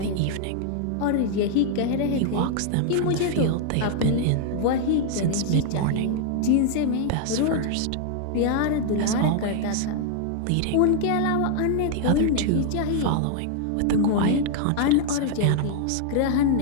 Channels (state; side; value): different; both; correlation 0.00